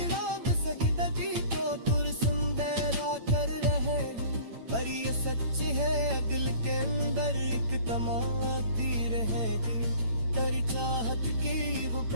सजदगी को पुरसुंदेरा कर रहे हूँ। पर ये सच है दिल के अंदर एक तमाती रहेगी, तेरी चाहत की वो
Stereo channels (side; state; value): left; late; 8.8 ms